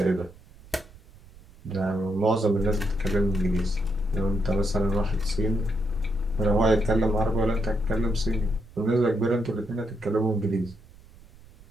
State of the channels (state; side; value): noise; right; rumble, 23 dB below the sound